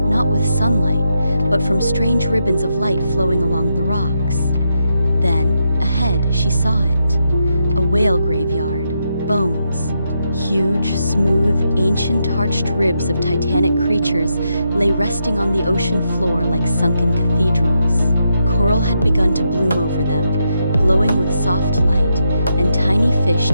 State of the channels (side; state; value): both; inverted; correlation -0.82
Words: not with sunlight, but from strange ribbons of light flowing along the rocks. Then, ahead, she saw it. A whale graveyard. Bones. Huge, smooth, ancient arched ribs of titanic creatures lay resting on the ocean floor like sunken cathedrals. Coral had begun to bloom over them, glowing with soft light, and tiny fish